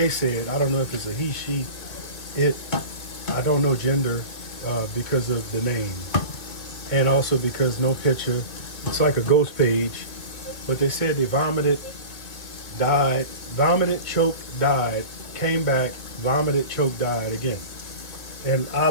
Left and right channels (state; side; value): late; right; 2.4 ms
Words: said, I don't know if it's a he, she, it, I don't know gender because of the name. And also because no picture. It's like a ghost page. But they said they vomited, choked, died, came back, vomited, choked, died again. And I